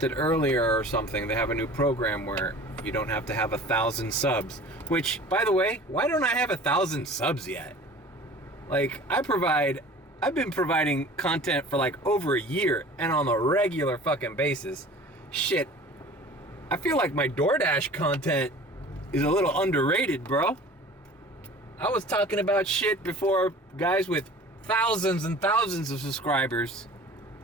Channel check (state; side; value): normal; both; correlation 0.43